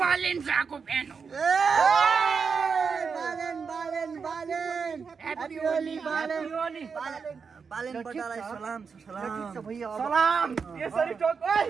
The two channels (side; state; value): left; quieter; 5.6 dB